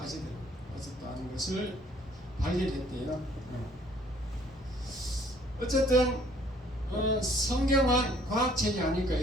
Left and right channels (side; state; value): both; normal; correlation 0.59